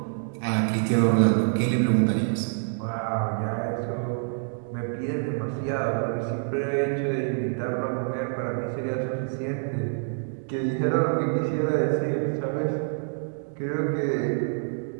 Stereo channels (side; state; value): left; silent; digital silence